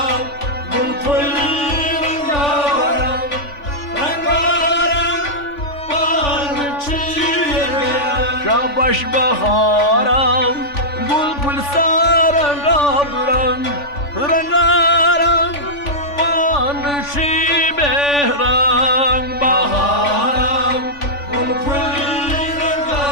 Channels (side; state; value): right; late; 3.5 ms